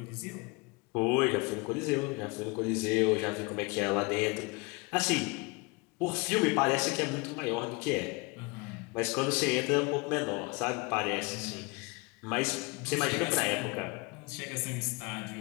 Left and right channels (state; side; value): quieter; right; 27.7 dB